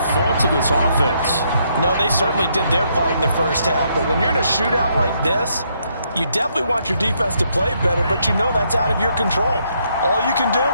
fault of this offense. No, they certainly did their part in the first half. But when you're in a shootout like this, you definitely want your defense to play better, but you know that's out of your control. All you can do,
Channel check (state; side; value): inverted; both; correlation -0.73